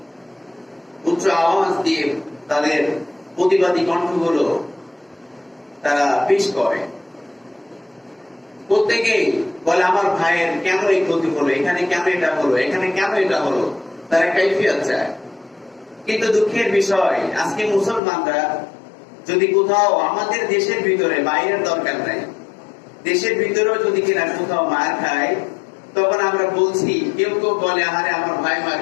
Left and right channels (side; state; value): right; drops out; at 18.0 s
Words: উচ্চ আওয়াজ দিয়ে তাদের প্রতিবাদী কণ্ঠগুলো তারা পেশ করে। প্রত্যেকেই বলে আমার ভাইয়ের কেন এই ক্ষতি হলো, এখানে কেন এটা হলো, এখানে কেন এটা হলো, তারা কাইফিয়াত চায়। কিন্তু দুঃখের বিষয় আজকে মুসলমানরা যদি কোথাও আমাদের দেশের ভিতরে, বাইরের দরকার নাই, দেশের ভিতরেও যদি কিনা কোথাও মার খায়, তখন আমরা বলছি, কেউ কেউ বলে আহারে আমার ভাই মার